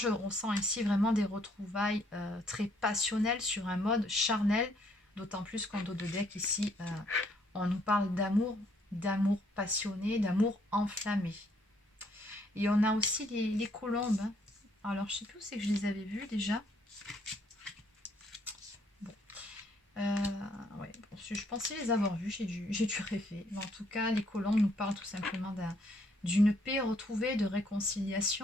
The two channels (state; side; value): normal; both; correlation 0.68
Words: ressens ici vraiment des retrouvailles très passionnelles sur un mode charnel, d'autant plus qu'en dos de deck, ici, on nous parle d'amour, d'amour passionné, d'amour enflammé. Et on a aussi les colombes, hein. Alors, je ne sais plus où c'est que je les avais vues déjà. Bon. Ouais, bon, je pensais les avoir vues, j'ai dû rêver. Mais en tout cas, les colombes nous parlent tout simplement d'une paix retrouvée, de